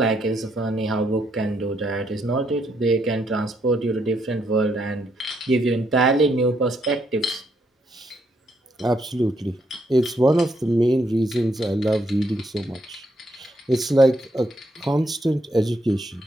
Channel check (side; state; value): both; normal; correlation 0.75